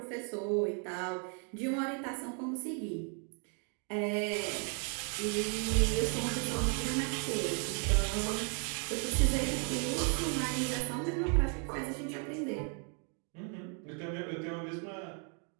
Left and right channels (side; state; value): left; quieter; 39.8 dB